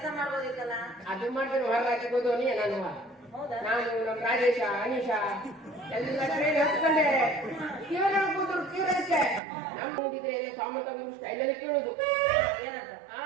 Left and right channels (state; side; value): drops out; left; at 9.4 s